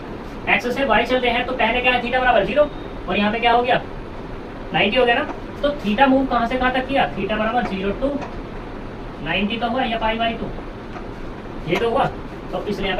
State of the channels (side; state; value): both; identical; correlation 1.00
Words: x से y चलते हैं तो पहले क्या है, थीटा बराबर 0, और यहाँ पे क्या हो गया 90 हो गया ना, तो थीटा मूव कहाँ से कहाँ तक किया, थीटा बराबर 0 टू 90 तो हुआ, या पाई बाई 2 ये तो हुआ, तो इसलिए